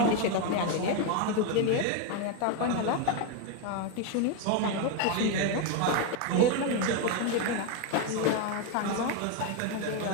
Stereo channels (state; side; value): different; both; correlation 0.02